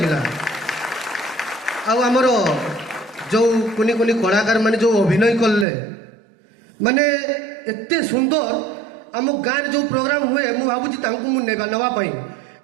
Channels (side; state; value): left; drops out; at 5.7 s